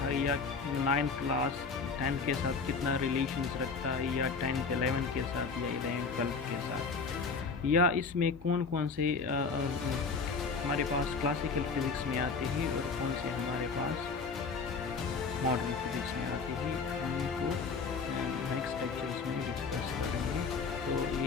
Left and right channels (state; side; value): quieter; right; 4.8 dB